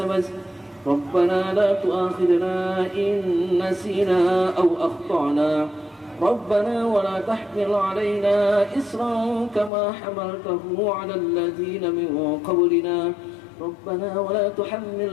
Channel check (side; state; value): right; drops out; at 9.7 s